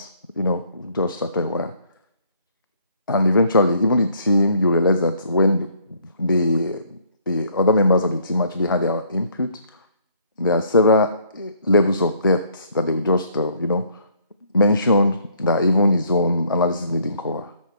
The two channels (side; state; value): both; inverted; correlation -0.63